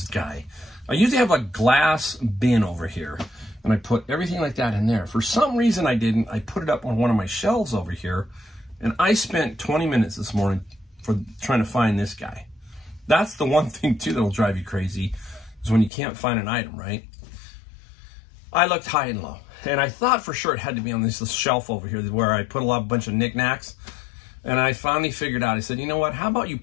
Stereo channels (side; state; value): right; drops out; at 15.9 s